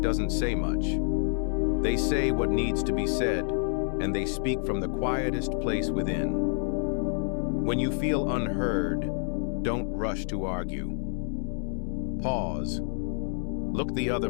doesn't say much. They say what needs to be said, and they speak from the quietest place within. When you feel unheard, don't rush to argue. Pause. Look the other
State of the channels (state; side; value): silent; right; 59 dB below the other